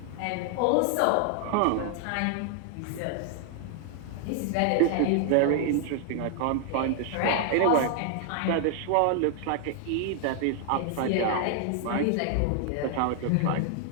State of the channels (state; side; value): different; both; correlation 0.00